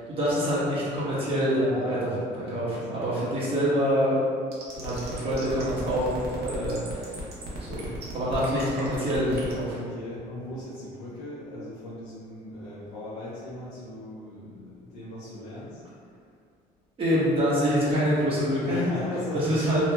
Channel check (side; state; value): both; normal; correlation 0.50